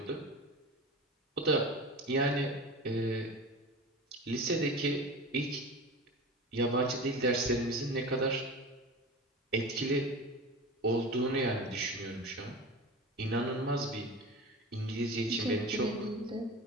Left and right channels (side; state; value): both; normal; correlation 0.32